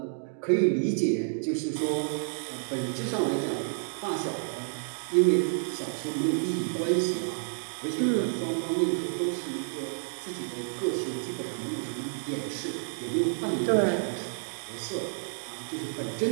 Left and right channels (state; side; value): silent; left; digital silence